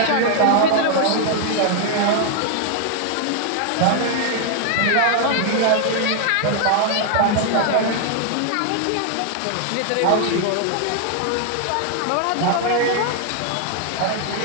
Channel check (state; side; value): different; both; correlation 0.00